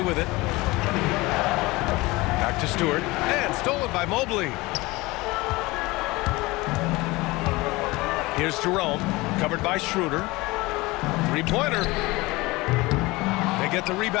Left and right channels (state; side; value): quieter; right; 21.7 dB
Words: with it. Back to Stewart, and stolen by Mobley. Here's Jerome, covered by Schroeder. Three-pointer. They get the